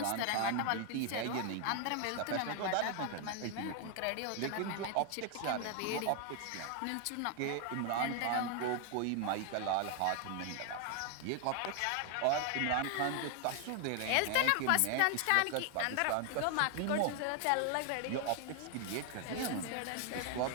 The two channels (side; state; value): both; different; correlation 0.00